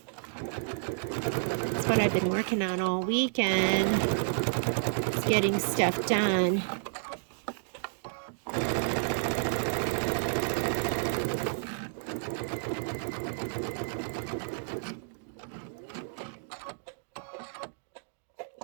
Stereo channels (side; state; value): left; silent; digital silence